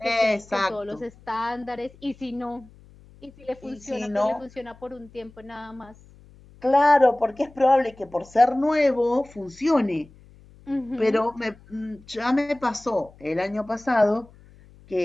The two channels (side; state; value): left; noise; hum, 25 dB below the sound